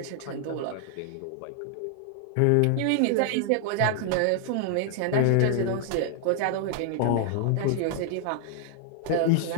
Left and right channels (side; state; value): both; different; correlation 0.00